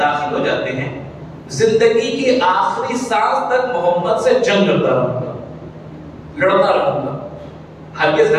ہو جاتے ہیں، زندگی کی آخری سانس تک محمد سے جنگ کرتا رہوں گا، لڑتا رہوں گا، ہرگز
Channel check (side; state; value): both; identical; correlation 1.00